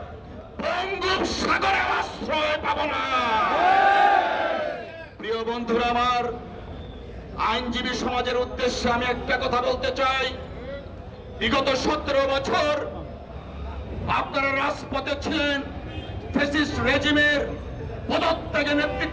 বঙ্গোপসাগরে আশ্রয় পাবো না। প্রিয় বন্ধুরা আমার, আইনজীবী সমাজের উদ্দেশ্যে আমি একটা কথা বলতে চাই। বিগত 17 বছর আপনারা রাজপথে ছিলেন, ফ্যাসিস্ট রেজিমের পদত্যাগে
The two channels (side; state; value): both; identical; correlation 1.00